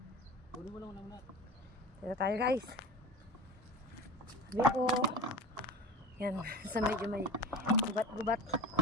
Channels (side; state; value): both; normal; correlation 0.33